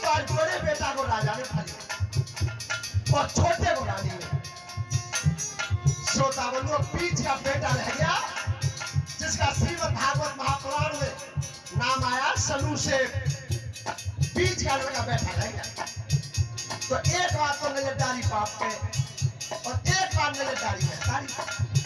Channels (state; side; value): identical; both; correlation 1.00